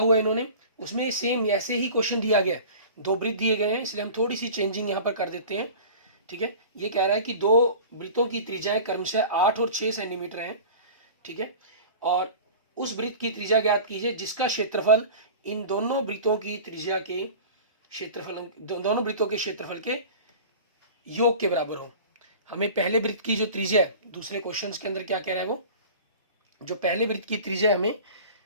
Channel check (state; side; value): inverted; both; correlation -0.38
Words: है इन्होंने, उसमें सेम ऐसे ही क्वेश्चन दिया गया, 2 वृत्त दिए गए हैं, इसलिए हम थोड़ी सी चेंजिंग यहाँ पर कर देते हैं। ठीक है, ये कह रहा है कि 2 वृत्तों की त्रिज्याएं क्रमशः 8 और 6 सेंटीमीटर हैं। ठीक है, और उस वृत्त की त्रिज्या ज्ञात कीजिए जिसका क्षेत्रफल इन दोनों वृत्तों की त्रिज्या के क्षेत्रफल, दोनों वृत्तों के क्षेत्रफल के योग के बराबर हो। हमें पहले वृत्त की जो त्रिज्या है, दूसरे क्वेश्चन के अंदर क्या कह रहा है, वो जो पहले वृत्त की त्रिज्या हमें